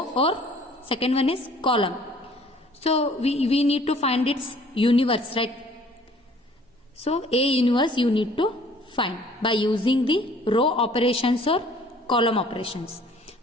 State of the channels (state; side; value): normal; both; correlation 0.55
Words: or second one is column. So we need to find its inverse, right? So A inverse you need to find by using the row operations or column operations.